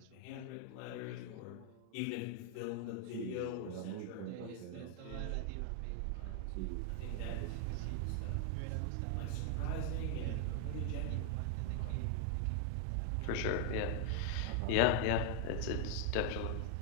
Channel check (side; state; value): both; different; correlation 0.00